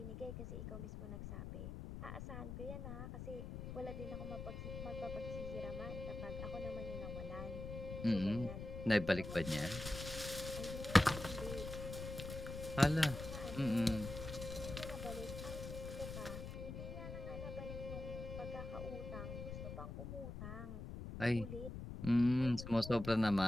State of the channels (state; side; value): noise; left; rumble, 7 dB below the sound